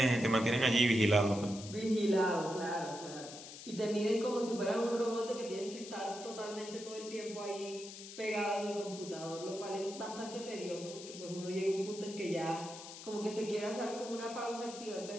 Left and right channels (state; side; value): noise; left; hiss, 13 dB below the sound